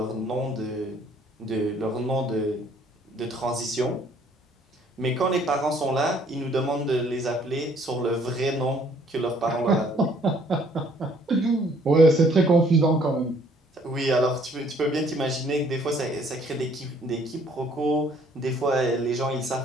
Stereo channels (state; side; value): normal; both; correlation 0.61